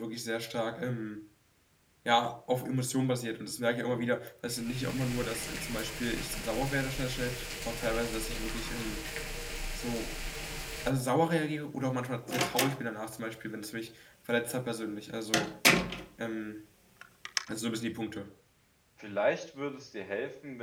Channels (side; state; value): both; identical; correlation 1.00